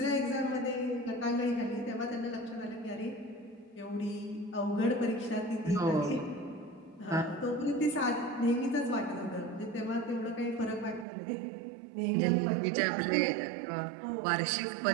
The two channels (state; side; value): drops out; left; at 11.1 s